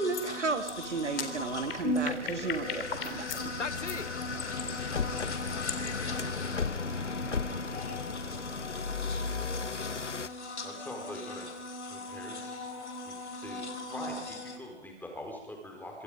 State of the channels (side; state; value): both; normal; correlation 0.00